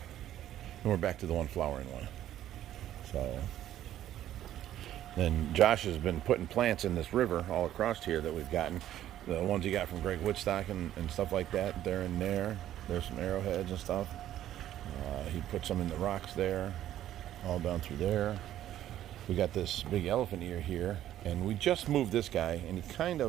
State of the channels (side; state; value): left; quieter; 12.3 dB